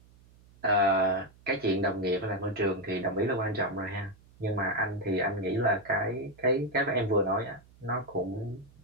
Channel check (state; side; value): noise; right; hum, 27 dB below the sound